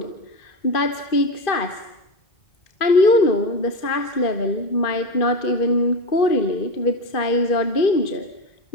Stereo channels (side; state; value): right; late; 2.5 ms